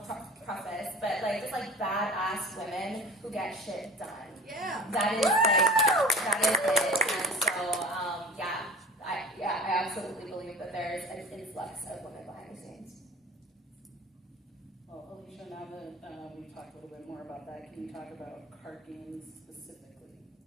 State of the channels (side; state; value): both; normal; correlation 0.38